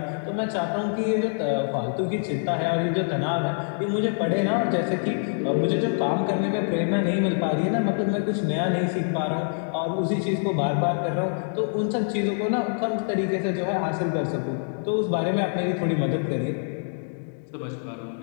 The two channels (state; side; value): silent; right; 61 dB below the other